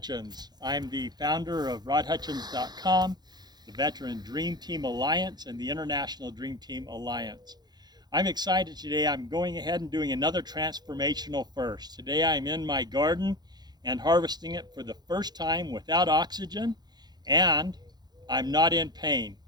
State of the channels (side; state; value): left; late; 0.20 ms